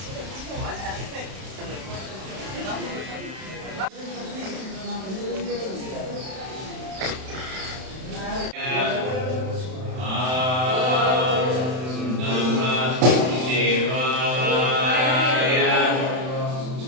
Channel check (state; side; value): late; left; 31 ms